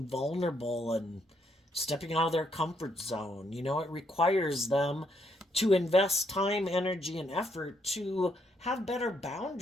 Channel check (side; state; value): both; normal; correlation 0.74